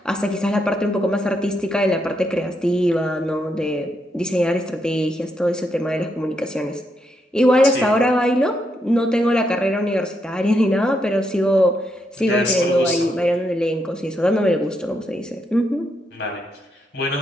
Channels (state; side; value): normal; both; correlation 0.79